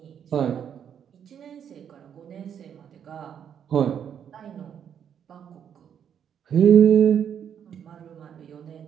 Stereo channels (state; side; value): quieter; left; 8.5 dB